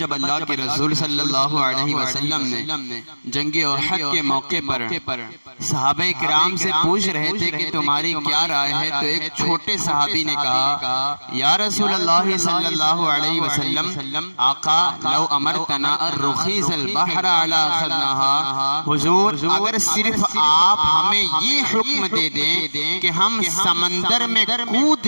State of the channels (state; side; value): inverted; both; correlation -1.00